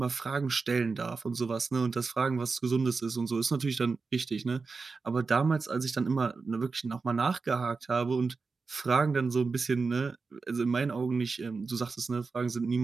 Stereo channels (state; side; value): quieter; left; 4.5 dB